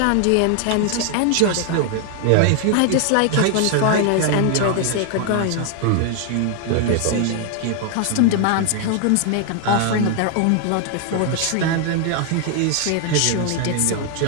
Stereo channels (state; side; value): different; both; correlation 0.00